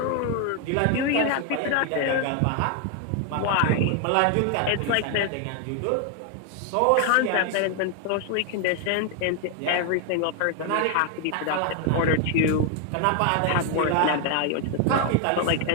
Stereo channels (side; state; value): both; different; correlation 0.01